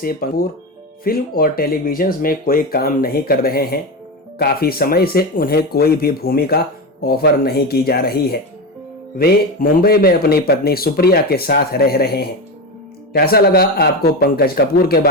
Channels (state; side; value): normal; both; correlation 0.18